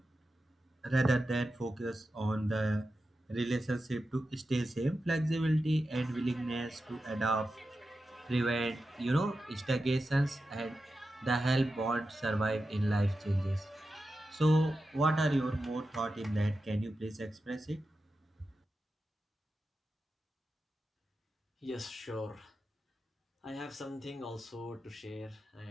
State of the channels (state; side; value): normal; both; correlation 0.91